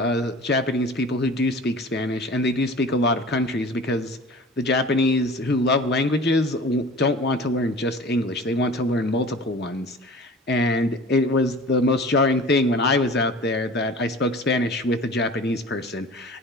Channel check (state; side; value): normal; both; correlation 0.41